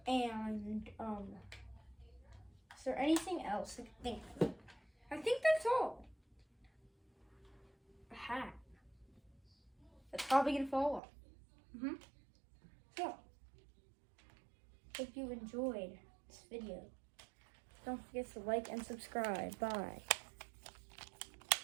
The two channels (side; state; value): left; drops out; at 11.0 s